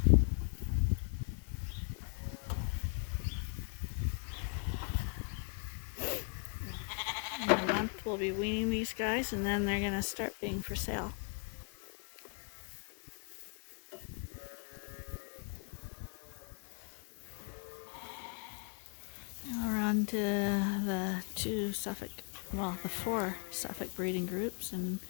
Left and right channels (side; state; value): right; quieter; 38.7 dB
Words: In a month we'll be weaning these guys, and then they're going to start being for sale. Now we're on to the the 4 Suffolk breeding groups in